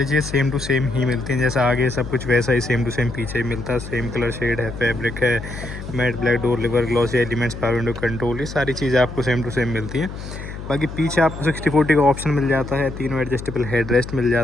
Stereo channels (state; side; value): noise; left; hum, 10 dB below the sound